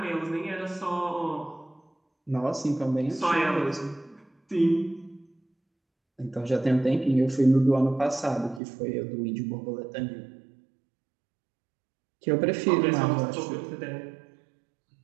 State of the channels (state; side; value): drops out; left; at 8.6 s